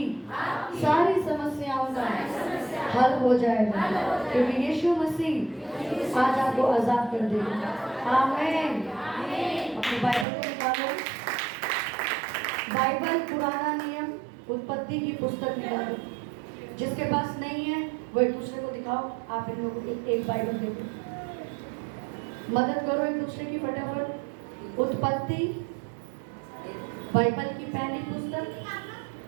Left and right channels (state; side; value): drops out; left; at 10.2 s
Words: सारी समस्याओं का हल हो जाएगा, क्योंकि यीशु मसीह आज आपको आजाद कर देगा। आमीन। अपनी बाइबल को निकालो, बाइबल पुराना नियम उत्पत्ति की पुस्तक निकालो। जिसके पास नहीं है वो एक दूसरे को दिखाओ। आप इन लोगों को एक बाइबल दे दो, मदद करो एक दूसरे की फटाफट। उत्पत्ति बाइबल की पहली पुस्तक,